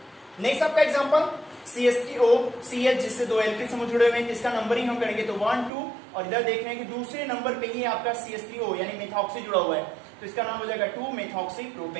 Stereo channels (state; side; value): drops out; left; at 5.7 s